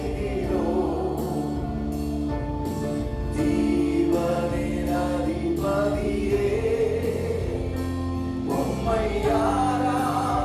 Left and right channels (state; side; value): identical; both; correlation 1.00